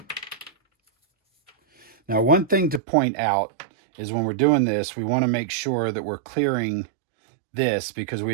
Now, one thing to point out is when we're doing this, we want to make sure that we're clearing this, because we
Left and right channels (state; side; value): drops out; left; at 2.8 s